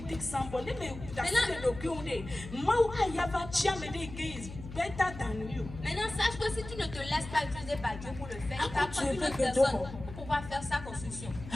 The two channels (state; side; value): noise; left; hum, 12 dB below the sound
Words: take somebody. Let me that's the document. Mau ayava chiamede is better than you. Maintenant, sache que si tu ne te laisses pas utiliser par Dieu pour le faire, il va Ah, prendre tu une veux autre que personne d'autres. pour pouvoir faire sa construction.